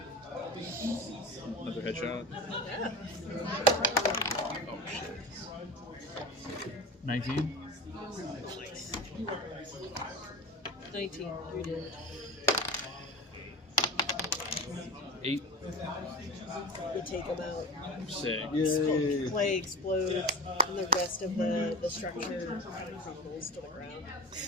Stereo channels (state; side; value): normal; both; correlation 0.31